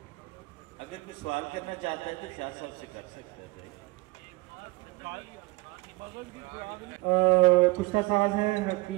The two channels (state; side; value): quieter; left; 22.7 dB